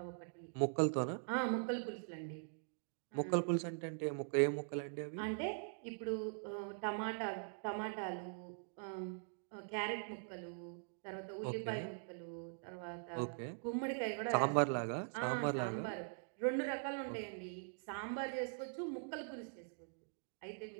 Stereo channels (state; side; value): silent; left; digital silence